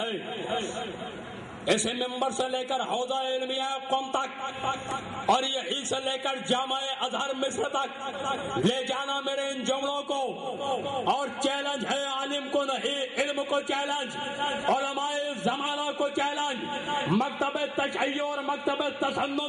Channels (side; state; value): both; identical; correlation 1.00